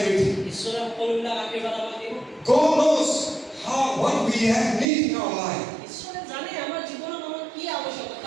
ঈশ্বৰে সকলোবিলাক আশীৰ্বাদ আমাক দিব God knows what we have need in our life. ঈশ্বৰে জানে আমাৰ জীৱনত আমাৰ কি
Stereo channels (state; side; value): drops out; left; at 4.9 s